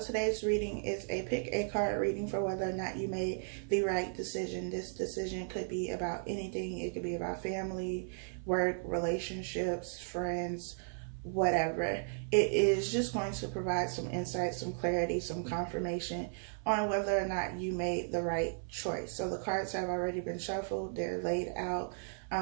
reading is a pick a card reading for whether or not you made the right decision. This decision could be about anything. It could be about family, work, relationships, friends, whatever. It is just going to provide some insight, some clarity, some confirmation on whether or not you made the right choice. So the cards have already been shuffled. They're laid out.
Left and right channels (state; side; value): silent; left; 54 dB below the other